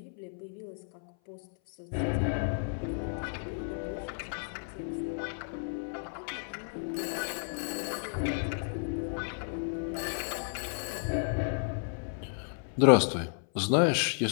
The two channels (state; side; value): silent; right; 56 dB below the other